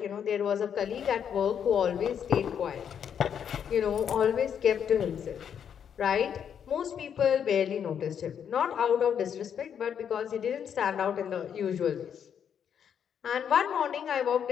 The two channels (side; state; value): right; quieter; 8.2 dB